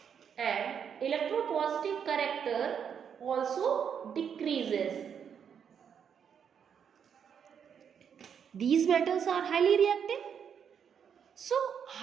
And electropositive character also decreases. These metals are highly reactive. So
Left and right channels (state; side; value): quieter; left; 7.7 dB